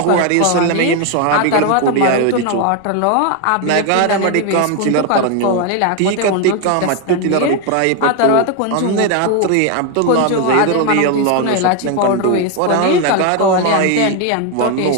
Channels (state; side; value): different; both; correlation 0.01